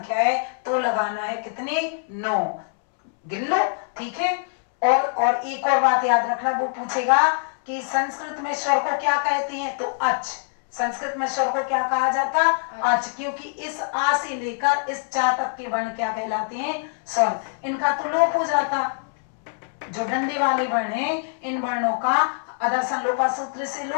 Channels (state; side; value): silent; right; 63 dB below the other